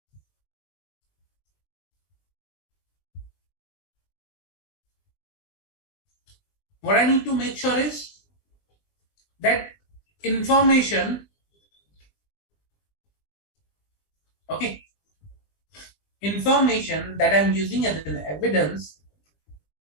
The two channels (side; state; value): right; late; 20 ms